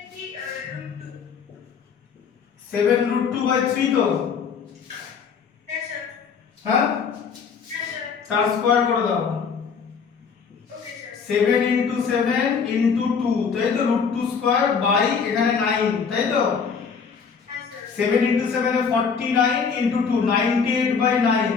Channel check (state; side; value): quieter; right; 6.0 dB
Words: 7√2/3 তো। হ্যাঁ স্যার। হ্যাঁ, হ্যাঁ স্যার। তার স্কয়ার করে দাও। Okay sir. 7 × 7 × 2, তাই তো, √2 স্কয়ার বাই এখানে 9, তাই তো। হ্যাঁ স্যার। 7 × 7 এ 49 × 2 98/9,